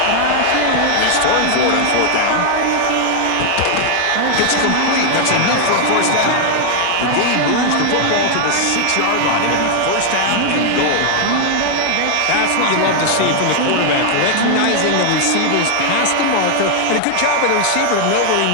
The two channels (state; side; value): different; both; correlation 0.00